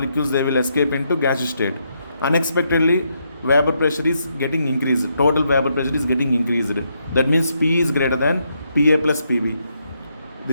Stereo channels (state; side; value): inverted; both; correlation -0.78